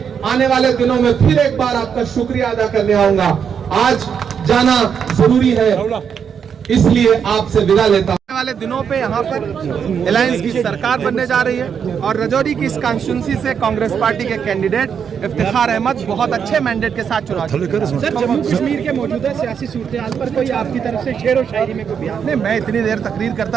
आने वाले दिनों में फिर एक बार आपका शुक्रिया अदा करने आऊंगा। आज जाना जरूरी है, इसलिए आपसे विदा लेता हूं। आने वाले दिनों पे यहाँ पर अलायंस की सरकार बनने जा रही है और राजौरी की इस कॉन्स्टिट्यूंसी से कांग्रेस पार्टी के कैंडिडेट इफ्तिखार अहमद बहुत अच्छे मैंडेट के साथ चुनाव। सर, जम्मू कश्मीर के मौजूदा सियासी सूरत पर कोई आपकी तरफ से शेर व शायरी में कोई बयान? नहीं, मैं इतनी देर तकरीर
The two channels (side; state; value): left; quieter; 7.3 dB